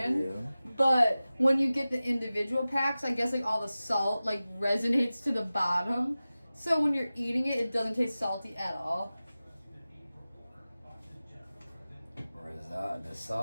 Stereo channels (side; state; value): both; inverted; correlation -0.96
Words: yeah. But when you get the individual packs, I guess like all the salt like resonates to the bottom. So when you're eating it, it doesn't taste salty at all. The